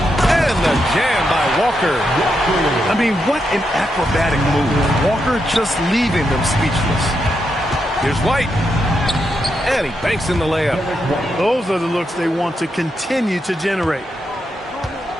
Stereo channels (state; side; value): normal; both; correlation 0.83